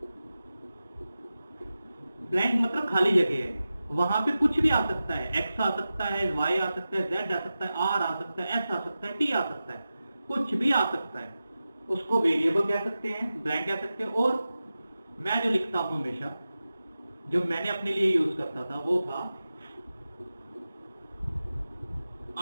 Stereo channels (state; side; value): inverted; both; correlation -0.93